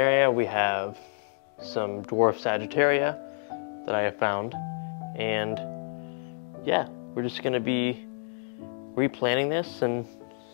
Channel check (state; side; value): silent; right; 59 dB below the other